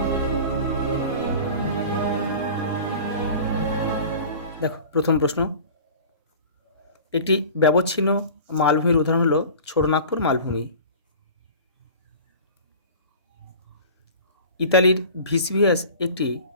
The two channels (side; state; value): both; inverted; correlation -0.39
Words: দেখো, প্রথম প্রশ্ন, একটি ব্যবচ্ছিন্ন মালভূমির উদাহরণ হলো ছোটনাগপুর মালভূমি। ইতালির ভিসভিয়াস একটি